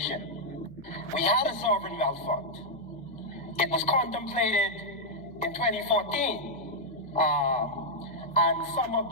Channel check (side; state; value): left; noise; hum, 21 dB below the sound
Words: We had a sovereign wealth fund. It was contemplated in 2014, and some